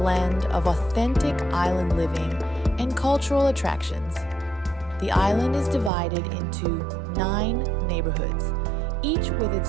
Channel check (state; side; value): drops out; left; at 5.9 s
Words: of authentic island living and cultural attractions. The island is divided into 9 neighborhoods, each with